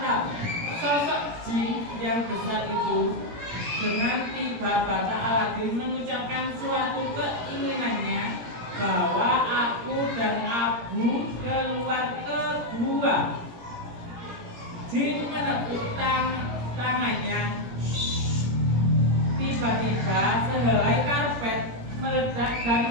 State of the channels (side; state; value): left; late; 17 ms